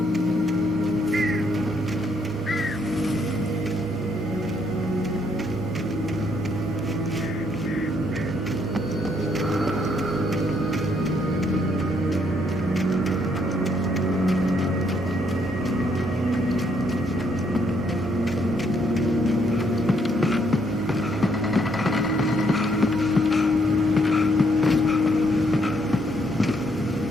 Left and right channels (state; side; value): normal; both; correlation 0.71